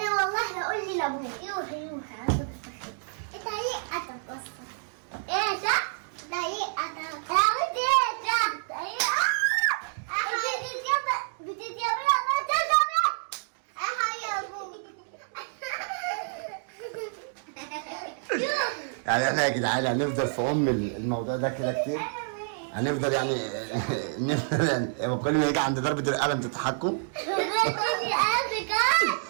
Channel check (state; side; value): silent; left; digital silence